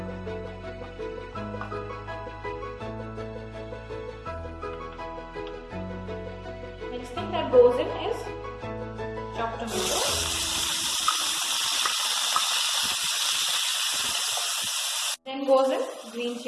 Next thing that goes in is chopped tomato. Then goes in green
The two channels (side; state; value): both; identical; correlation 1.00